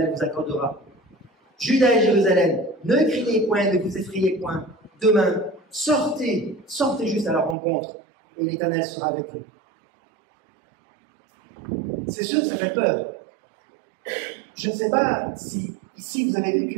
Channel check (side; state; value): left; drops out; at 7.6 s